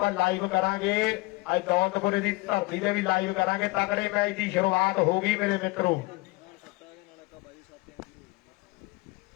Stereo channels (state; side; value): quieter; right; 23.0 dB